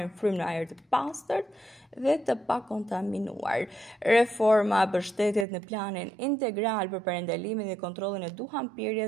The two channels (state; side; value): drops out; left; at 5.5 s